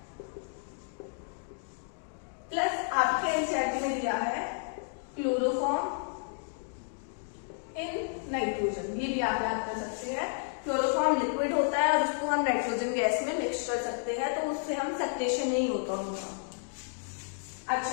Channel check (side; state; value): right; silent; digital silence